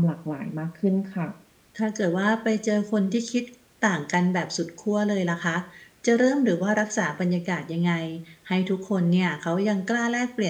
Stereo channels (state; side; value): identical; both; correlation 1.00